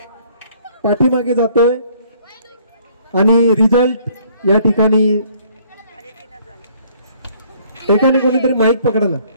पाठीमागे जातोय आणि रिझल्ट या ठिकाणी एकाने कोणीतरी माईक पकडा ना.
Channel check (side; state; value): both; inverted; correlation -0.61